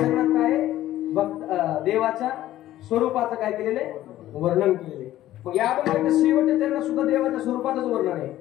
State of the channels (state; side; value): quieter; right; 14.0 dB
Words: काय देवाच्या स्वरूपाचं काय केलेले वर्णन केलेले. मग या अभंगाच्या शेवटच्या चरणात सुद्धा देवाच्या स्वरूपाचंच वर्णन आहे.